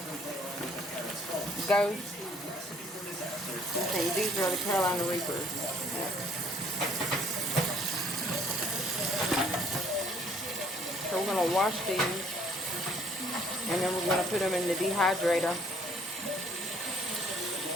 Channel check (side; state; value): both; normal; correlation 0.60